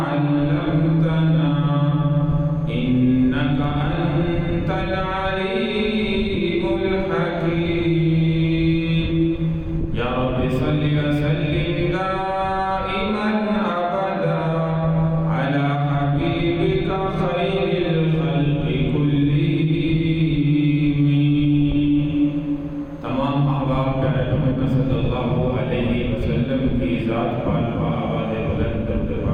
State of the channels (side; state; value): both; identical; correlation 1.00